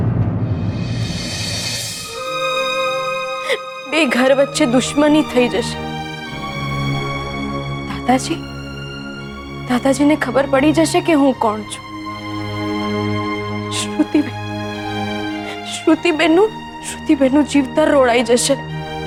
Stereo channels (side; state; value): both; identical; correlation 1.00